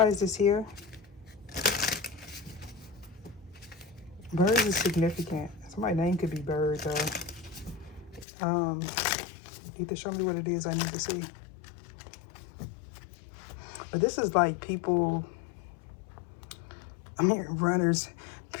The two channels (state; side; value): drops out; right; at 8.2 s